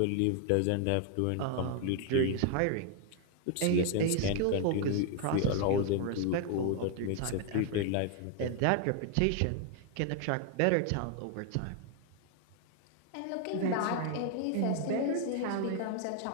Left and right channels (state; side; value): different; both; correlation 0.00